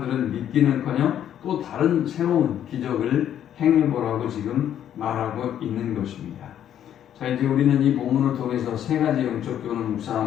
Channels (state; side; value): quieter; right; 10.3 dB